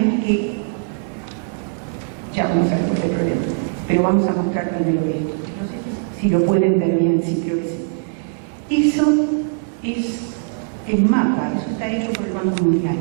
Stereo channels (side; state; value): left; silent; digital silence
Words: que, ya vamos a ver cuál es el problema, pero vamos a mostrar primero esto. No sé si lo pueden ver bien, sí, creo que sí. Eso es el mapa, eso está hecho por el Banco Mundial.